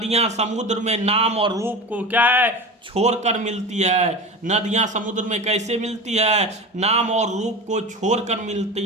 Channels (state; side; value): normal; both; correlation 0.29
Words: समुद्र में नाम और रूप को क्या है? छोड़कर मिलती है। नदियां समुद्र में कैसे मिलती है? नाम और रूप को छोड़कर मिलती